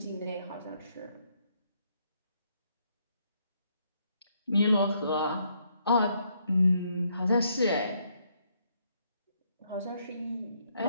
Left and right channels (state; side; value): inverted; both; correlation -0.72